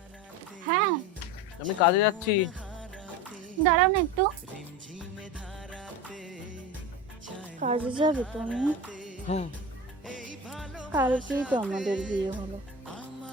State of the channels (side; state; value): both; normal; correlation 0.27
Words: হ্যাঁ, আমি কাজে যাচ্ছি। দাঁড়াও না একটু। কাজে যাবে তুমি? হুম। কালকেই তো আমাদের বিয়ে হলো,